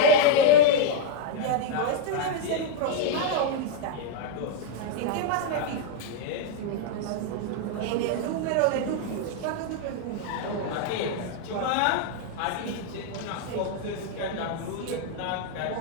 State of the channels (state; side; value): different; both; correlation -0.01